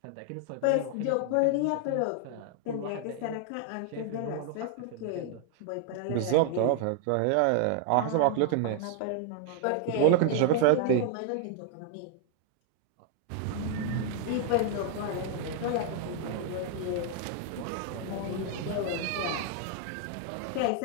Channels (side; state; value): both; different; correlation 0.00